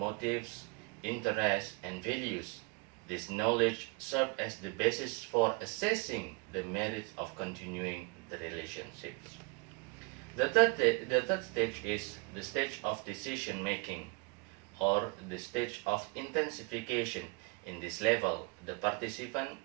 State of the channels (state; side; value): quieter; left; 29.2 dB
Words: interests, and values. This knowledge serves as the basis for assessing the merits of continuing the relationships. The third stage is the stage of decision making, or the stage of intensification. In this level, the participant